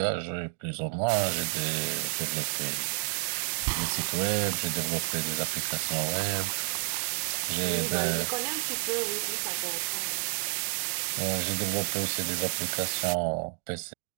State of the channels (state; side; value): silent; left; 56 dB below the other